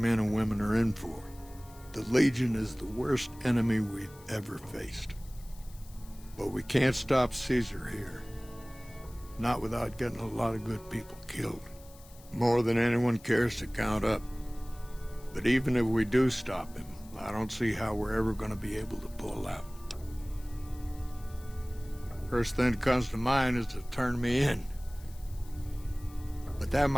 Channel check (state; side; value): noise; left; hiss, 23 dB below the sound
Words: and women are in for. The Legion is the worst enemy we've ever faced. But we can't stop Caesar here. Not without getting a lot of good people killed. More than anyone cares to count up. But even if we do stop him, I don't see how we're ever going to be able to pull out. First thing that comes to mind is to turn me in. But that